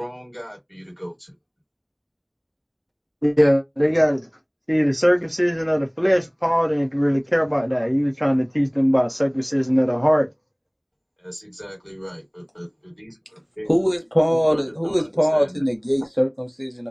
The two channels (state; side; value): identical; both; correlation 1.00